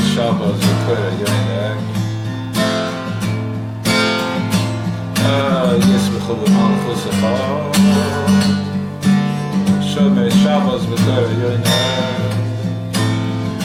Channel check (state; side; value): identical; both; correlation 1.00